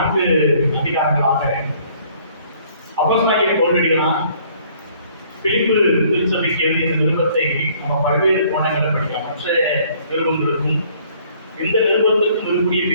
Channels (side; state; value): both; inverted; correlation -0.60